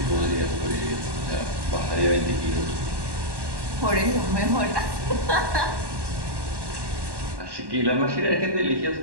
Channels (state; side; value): late; left; 1.1 ms